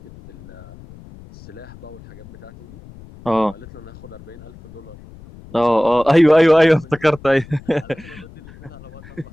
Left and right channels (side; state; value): left; noise; rumble, 19 dB below the sound